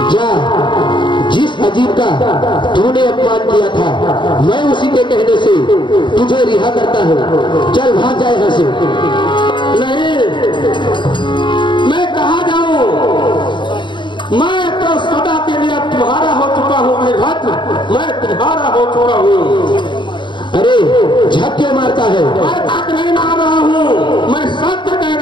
जा, जिस अजीब का तूने अपमान किया था, मैं उसी के कहने से तुझे रिहा करता हूँ। चल भाग जाए यहाँ से। नहीं, मैं कहाँ जाऊं? मैं तो सदा के लिए तुम्हारा हो चुका हूँ वीरभद्र, मैं तुम्हारा हो चुका हूँ। अरे झक क्यों मारता है? मैं झक नहीं मार रहा हूँ, मैं सत्य कह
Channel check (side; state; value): right; late; 0.23 ms